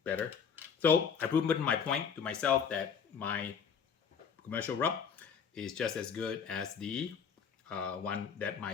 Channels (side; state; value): right; quieter; 6.8 dB